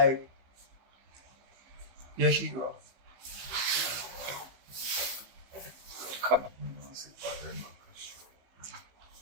your hero. Come on.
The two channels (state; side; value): late; left; 15 ms